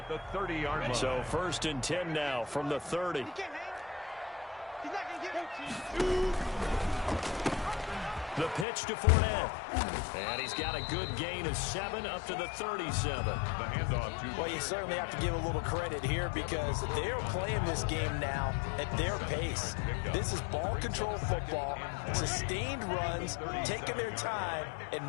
the 30-yard line. So 1st and 10 now from the 30. The pitch to Fournette. And he's got a good gain of 7 up to the 37. The handoff to... Well, you certainly have to give a little credit here because they're playing this game now at their pace. This is ball control football, sustained runs, taking their time,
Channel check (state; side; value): drops out; right; at 8.7 s